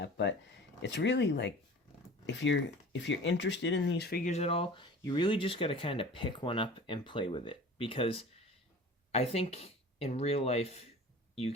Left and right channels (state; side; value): normal; both; correlation 0.41